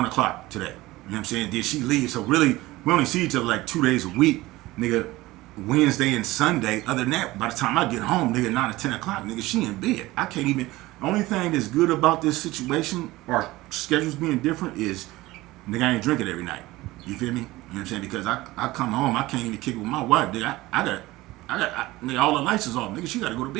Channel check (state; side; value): quieter; left; 18.9 dB